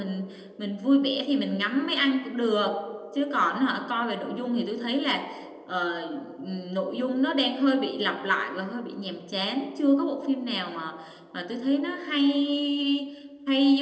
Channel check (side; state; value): both; identical; correlation 1.00